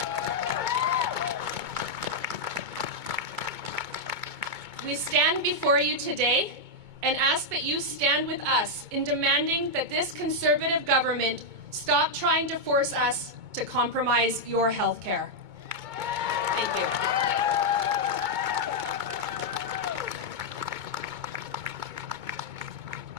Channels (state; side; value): late; left; 2.2 ms